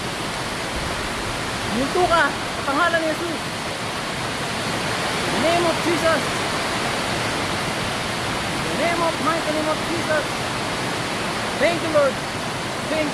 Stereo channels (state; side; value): identical; both; correlation 1.00